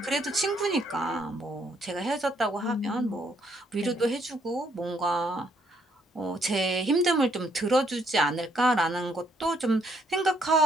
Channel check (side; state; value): both; normal; correlation 0.70